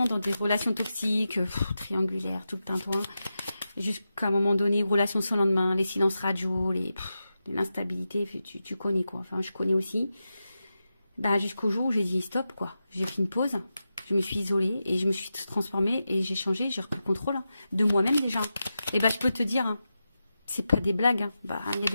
dans des relations toxiques, triangulaires, tout le tintouin, jusqu'à un moment donné, relations sans lendemain, les silences radio, l'instabilité, tu connais quoi. Enfin, je connais aussi. Bah, jusqu'au jour où j'ai dit stop, quoi. J'ai pris une pause, je me suis isolée et je me suis transformée et j'ai changé, j'ai repris le contrôle, hein, de moi-même déjà. Et bah, je peux te dire, hein, c'est pas des blagues. Hein. Bah, il y a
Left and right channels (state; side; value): inverted; both; correlation -0.90